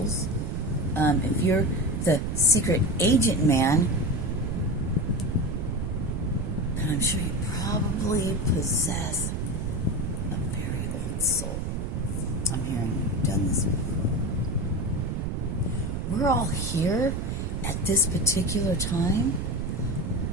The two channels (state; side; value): noise; right; rumble, 1 dB below the sound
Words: If you're the secret agent man, then I'm sure you probably possess a very old soul. I'm hearing you've done this before. We're all here at this particular time,